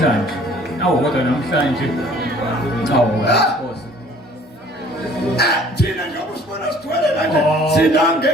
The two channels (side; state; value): both; normal; correlation 0.54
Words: kodwa namhlanje thina njengoba usibona sigcwele kanje sina